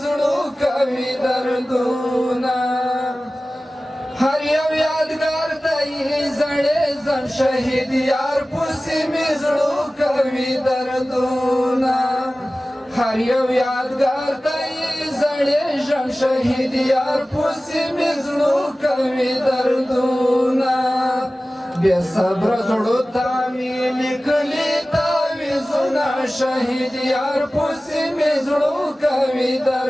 زړو کوي دردونه هر یو یادګار دی زړې زن شهید یار پسې مې زړو کوي دردونه هر یو یادګار دی زړې ژوند شهید یار پسې مې زړو کوي دردونه بې صبره زړو ته مې لیکلي تعویضونه شهید یار پسې مې زړو کوي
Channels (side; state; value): both; normal; correlation 0.97